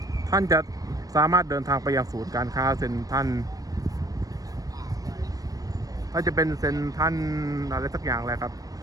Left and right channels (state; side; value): late; left; 0.18 ms